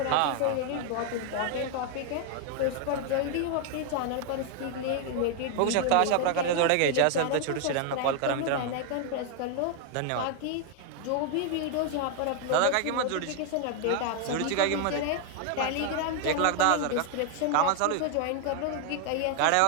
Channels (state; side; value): different; both; correlation 0.00